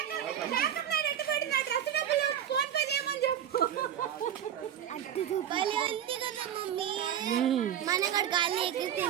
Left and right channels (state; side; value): quieter; left; 10.0 dB